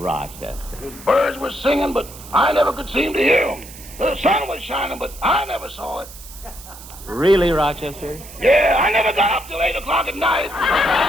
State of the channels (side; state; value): right; noise; hiss, 17 dB below the sound